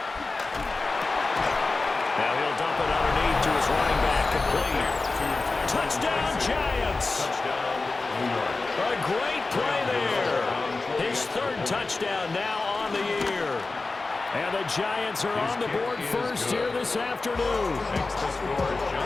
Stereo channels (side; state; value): right; quieter; 3.6 dB